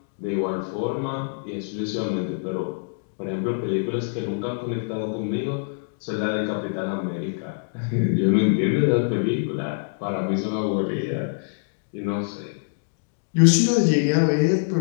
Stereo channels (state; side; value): silent; right; digital silence